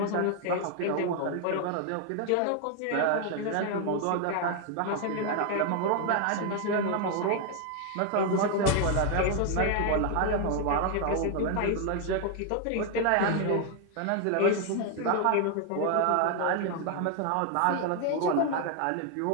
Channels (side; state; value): both; different; correlation 0.01